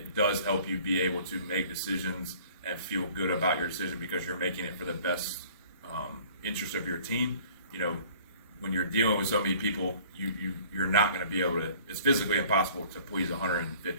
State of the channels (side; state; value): both; inverted; correlation -0.51